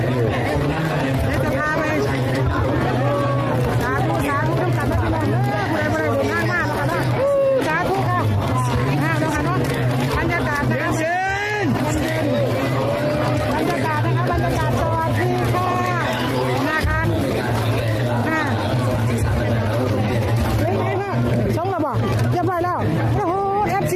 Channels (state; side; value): identical; both; correlation 1.00